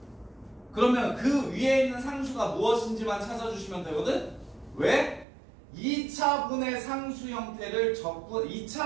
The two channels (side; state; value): left; drops out; at 5.2 s